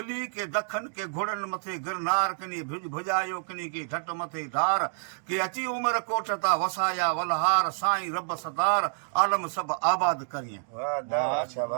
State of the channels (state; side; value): silent; left; digital silence